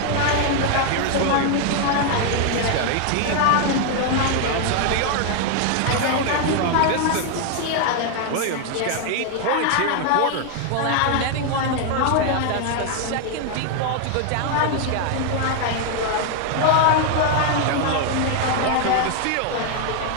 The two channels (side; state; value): both; different; correlation 0.00